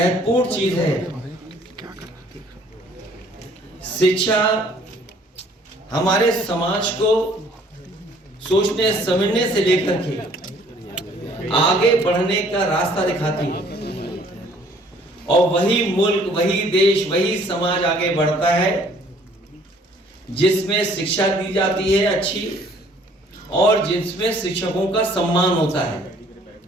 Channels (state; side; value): normal; both; correlation 0.58